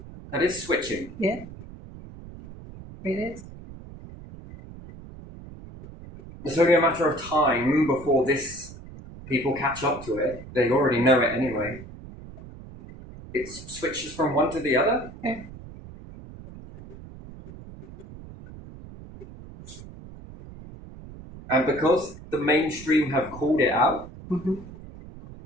That is switching. Yeah. It is. It's only a matter of time before people catch up to it. They already know it anyway. it switches from one to the other. Yeah. And because the mainstream have called it out,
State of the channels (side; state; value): right; noise; rumble, 16 dB below the sound